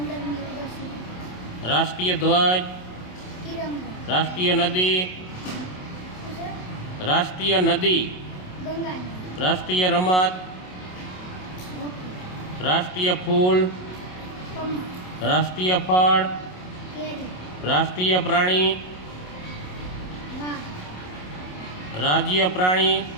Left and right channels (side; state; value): right; late; 27 ms